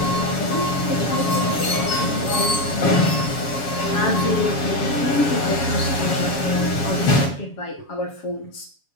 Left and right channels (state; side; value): late; right; 7.2 ms